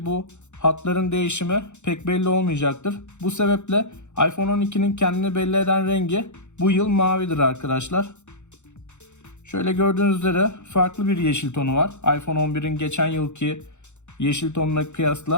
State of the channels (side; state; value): right; late; 0.83 ms